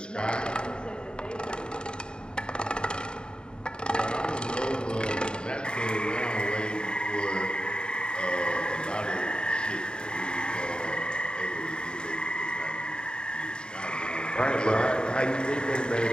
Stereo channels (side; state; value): right; late; 0.049 ms